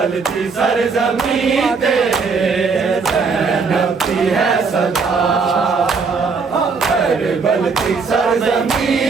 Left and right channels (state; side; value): quieter; left; 4.9 dB